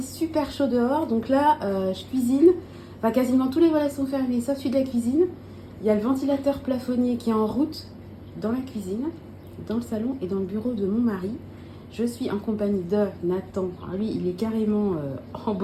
super chaud dehors, donc là je cuisine, enfin quasiment tous les volets sont fermés sauf celui de la cuisine, il y a le ventilateur plafonnier qui est en route dans la cuisine, dans le salon et dans le bureau de mon mari. Je suis en compagnie de Nathan, alors lui il est carrément en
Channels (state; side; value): identical; both; correlation 1.00